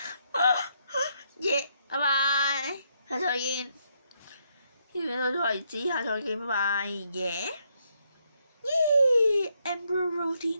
耶！拜拜，下次再見。呢條片到此為止，下次再見，拜拜。耶！Emperor Road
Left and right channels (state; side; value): inverted; both; correlation -0.75